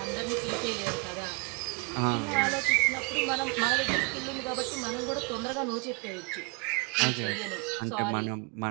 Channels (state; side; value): quieter; left; 31.1 dB